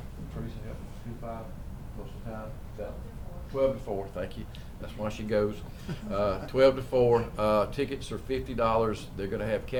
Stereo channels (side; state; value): both; identical; correlation 1.00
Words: Teresa, help me. 2 to 5 most of the time. 12 to 4, thank you. That's why she goes. 12 to 4. Tickets are $50. They're going to have